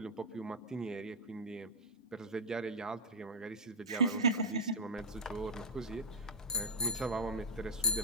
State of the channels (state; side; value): normal; both; correlation -0.03